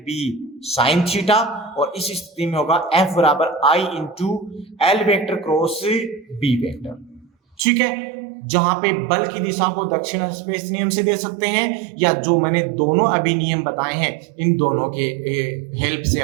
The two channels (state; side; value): drops out; left; at 7.6 s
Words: साइन थीटा, और इस स्थिति में होगा F बराबर I into L vector cross B vector. ठीक है, जहां पे बल की दिशा को दक्षिण स्पेस नियम से दे सकते हैं, या जो मैंने दोनों अभी नियम बताए हैं, इन दोनों के हेल्प से